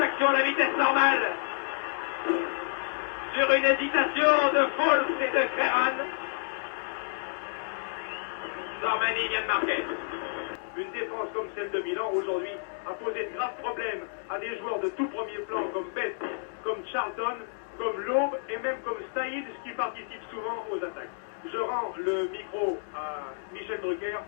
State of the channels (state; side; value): silent; right; digital silence